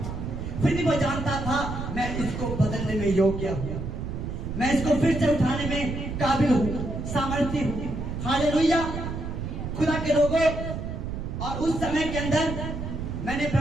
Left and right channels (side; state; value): right; noise; rumble, 5 dB below the sound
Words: फिर भी वो जानता था मैं इसको बदलने में योग्य हूँ, मैं इसको फिर से उठाने में काबिल हूँ, सामर्थ्य हूँ। हालेलुया। खुदा के लोगों, और उस समय के अंदर मैंने